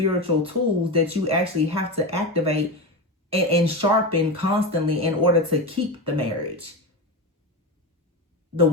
tools that you actually have to activate and sharpen constantly in order to keep the marriage. The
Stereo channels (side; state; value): both; normal; correlation 0.19